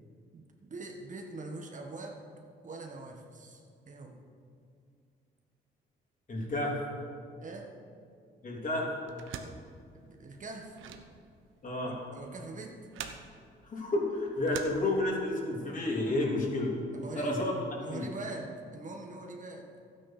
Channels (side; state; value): both; normal; correlation 0.44